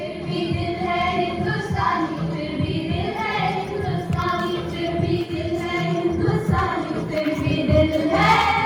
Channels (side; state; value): both; identical; correlation 1.00